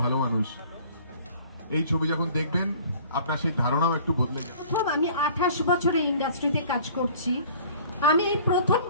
ভালো মানুষ। এই ছবি যখন দেখবেন আপনার সেই ধারণাও একটু বদলে যাবে। আমি 28 বছরে ইন্ডাস্ট্রিতে কাজ করছি, আমি এই প্রথম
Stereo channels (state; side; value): inverted; both; correlation -0.50